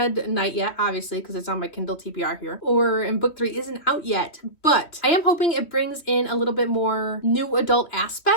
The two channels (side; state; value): right; late; 3.1 ms